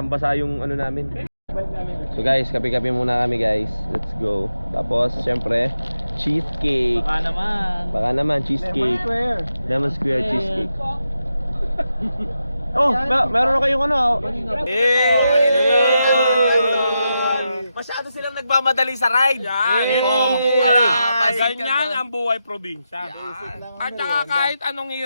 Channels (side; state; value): both; inverted; correlation -0.87